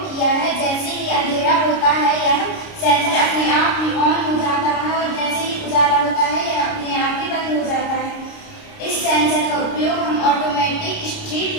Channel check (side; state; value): right; late; 29 ms